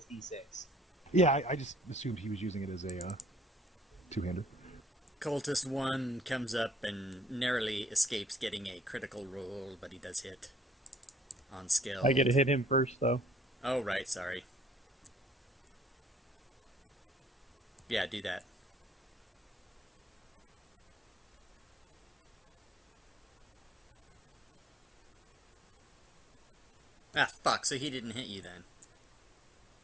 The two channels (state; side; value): normal; both; correlation 0.62